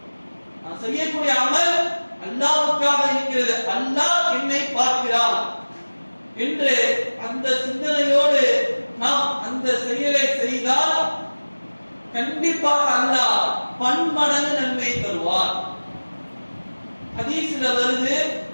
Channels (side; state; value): both; inverted; correlation -1.00